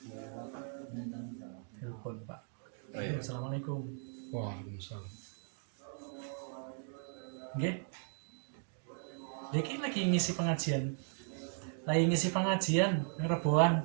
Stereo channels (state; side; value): silent; left; 53 dB below the other